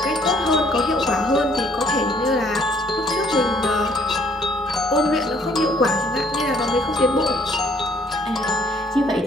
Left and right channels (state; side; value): normal; both; correlation 0.62